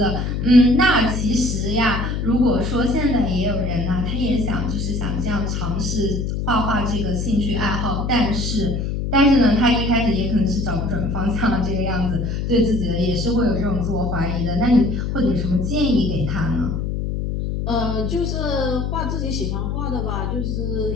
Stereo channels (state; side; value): noise; left; hum, 2 dB below the sound